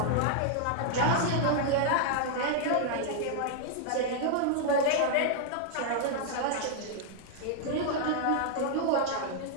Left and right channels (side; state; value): both; different; correlation -0.01